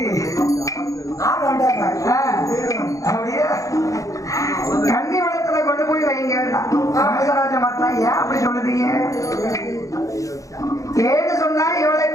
அப்படியே கன்னி மடத்துல கொண்டு போய் வைங்க. ராமராஜ மாத்தா ஏன் அப்படி சொல்லுதீங்க? ஏன்னு சொன்னா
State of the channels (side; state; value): right; late; 0.16 ms